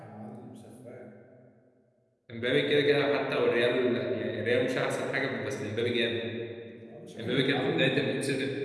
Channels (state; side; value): identical; both; correlation 1.00